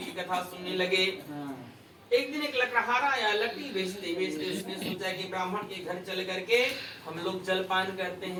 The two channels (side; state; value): both; identical; correlation 1.00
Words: कथा सुनने लगे। एक दिन एक लकड़हारा आया, लकड़ी बेचते बेचते उसने सोचा कि ब्राह्मण के घर चल करके हम लोग जलपान करते